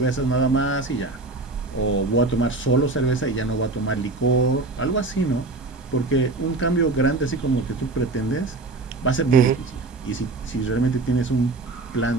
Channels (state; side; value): quieter; left; 3.4 dB